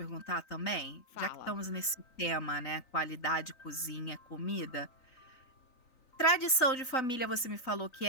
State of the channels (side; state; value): right; late; 3.9 ms